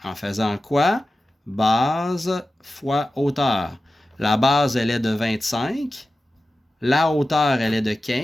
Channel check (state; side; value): normal; both; correlation 0.94